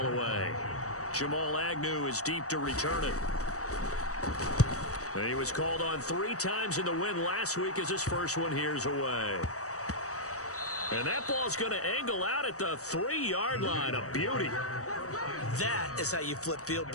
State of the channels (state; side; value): late; right; 0.65 ms